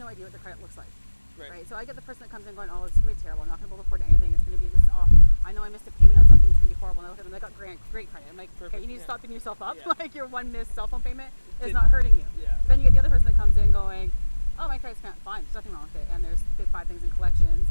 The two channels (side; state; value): both; inverted; correlation -1.00